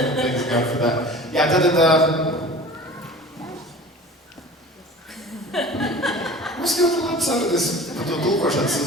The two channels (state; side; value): normal; both; correlation 0.40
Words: God for that. Jā, tad mums ļoti labi sarunas par to tulkošanas